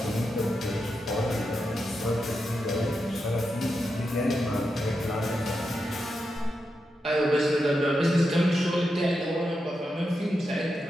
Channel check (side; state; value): both; normal; correlation 0.87